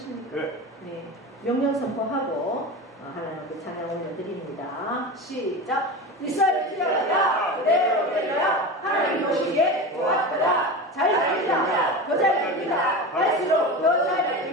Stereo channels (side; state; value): both; normal; correlation 0.26